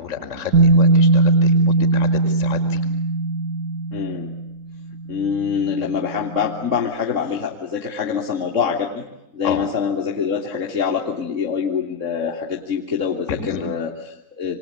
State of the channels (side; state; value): left; late; 3.6 ms